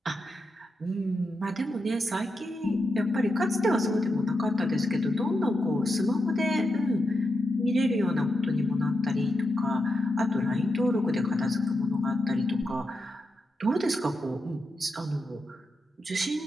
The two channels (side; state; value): both; normal; correlation 0.87